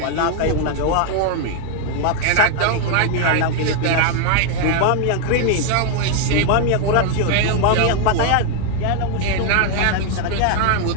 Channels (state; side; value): different; both; correlation 0.01